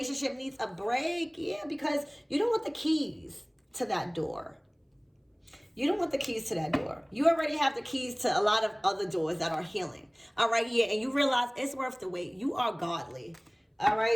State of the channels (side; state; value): both; identical; correlation 1.00